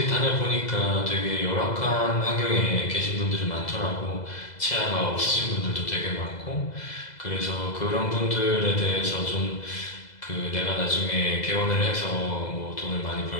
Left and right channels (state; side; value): late; right; 2.0 ms